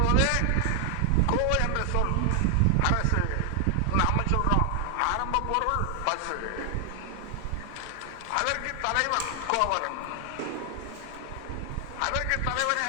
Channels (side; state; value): both; different; correlation 0.00